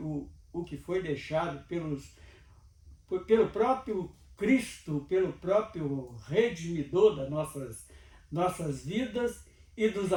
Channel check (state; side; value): identical; both; correlation 1.00